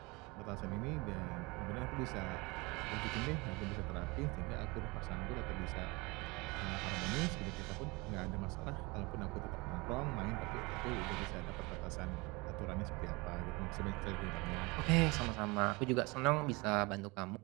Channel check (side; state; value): left; quieter; 25.3 dB